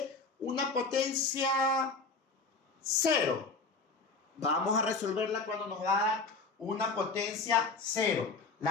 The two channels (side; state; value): right; quieter; 4.0 dB